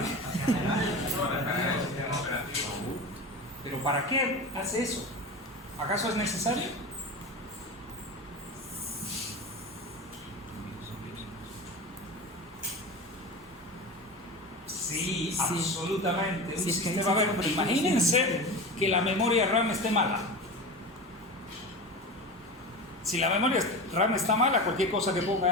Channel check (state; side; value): normal; both; correlation 0.27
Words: ¿Pero para qué hace eso? ¿Acaso es necesario? Sí, absolutamente. Un Sí, es que ahí sistema, sí a ver, que- imagínense que la memoria RAM esté mala. Si la memoria RAM está mala, cualquier cosa que ponga